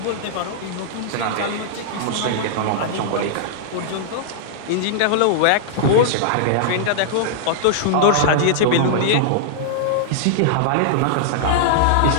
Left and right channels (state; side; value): different; both; correlation -0.02